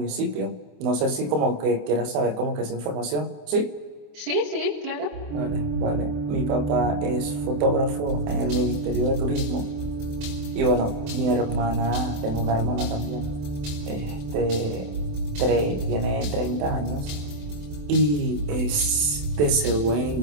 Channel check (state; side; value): late; left; 27 ms